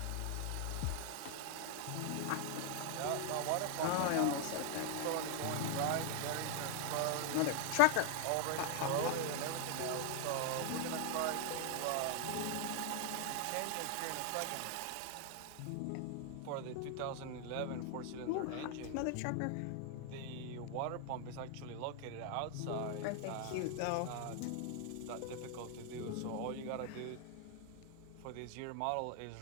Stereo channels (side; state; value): both; different; correlation 0.00